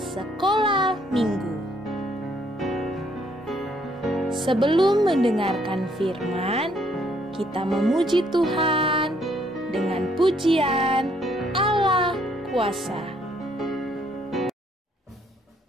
minggu. Sebelum mendengarkan firman, kita memuji Tuhan dengan pujian Allah Kuasa.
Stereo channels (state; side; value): normal; both; correlation 0.68